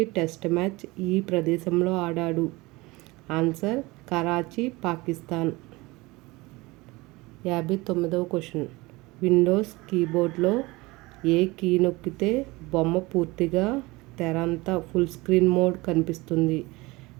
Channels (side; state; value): left; quieter; 22.3 dB